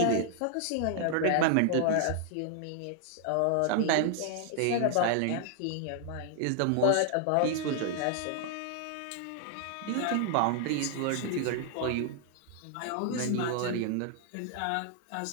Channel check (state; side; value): different; both; correlation 0.00